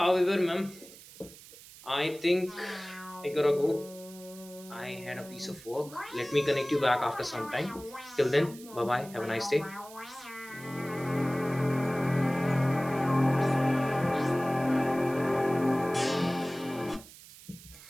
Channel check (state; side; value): noise; right; hiss, 19 dB below the sound